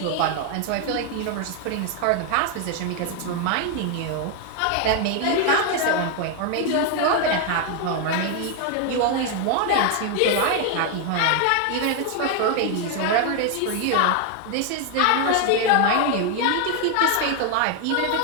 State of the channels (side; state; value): both; different; correlation 0.01